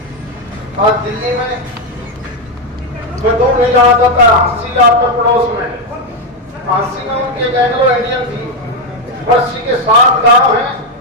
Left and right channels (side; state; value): both; normal; correlation 0.05